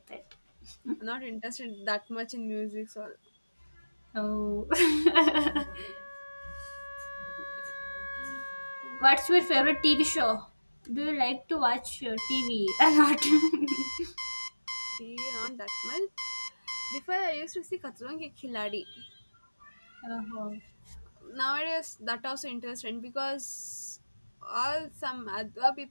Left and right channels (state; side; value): inverted; both; correlation -1.00